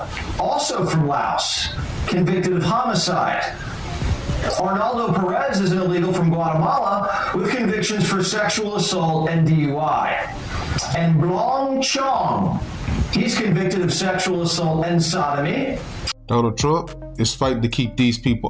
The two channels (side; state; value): both; identical; correlation 1.00